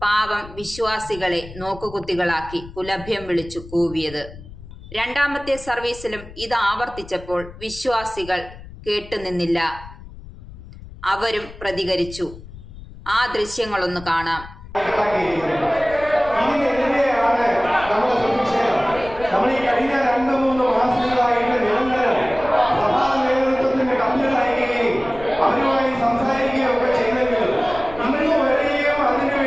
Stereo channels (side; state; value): left; noise; rumble, 16 dB below the sound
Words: പാവം വിശ്വാസികളെ നോക്കുകുത്തികളാക്കി പുലഭ്യം വിളിച്ചു കൂവിയത്. രണ്ടാമത്തെ സർവീസിലും ഇത് ആവർത്തിച്ചപ്പോൾ വിശ്വാസികൾ കേട്ടുനിന്നില്ല. അവരും പ്രതികരിച്ചു. ആ ദൃശ്യങ്ങളൊന്ന് കാണാം. സംസാരിക്കുകയൊക്കെ ചെയ്തെങ്കിലും ഇന്ന് വരെയും